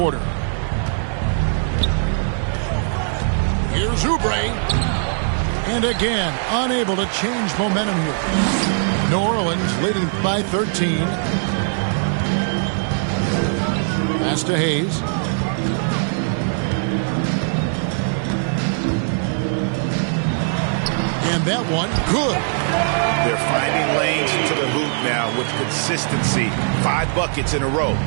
Here's Oubre. And again, unable to change momentum here. New Orleans leading by 13. Pass to Hayes. And that one, good. They're finding lanes into the hoop now with consistency. 5 buckets in a row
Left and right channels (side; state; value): left; silent; digital silence